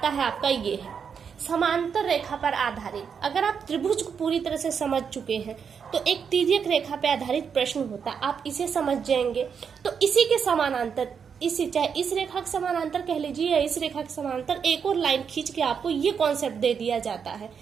है आपका, ये है समांतर रेखा पर आधारित। अगर आप त्रिभुज को पूरी तरह से समझ चुके हैं तो एक तिर्यक रेखा पर आधारित प्रश्न होता है, आप इसे समझ जाएंगे तो इसी के समानांतर, इसी चाहे इस रेखा के समानांतर कह लीजिए या इस रेखा के समानांतर एक और लाइन खींच के आपको ये कॉन्सेप्ट दे दिया जाता है।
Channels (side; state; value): left; quieter; 6.7 dB